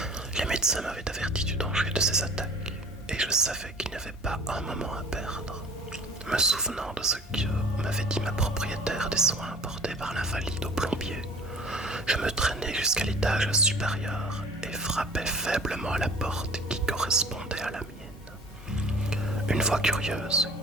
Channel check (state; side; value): normal; both; correlation 0.46